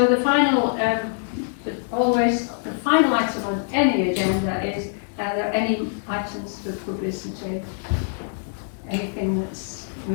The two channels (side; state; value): right; silent; 57 dB below the other